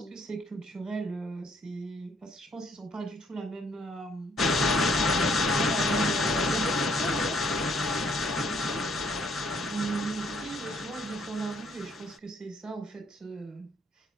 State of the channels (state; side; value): normal; both; correlation 0.66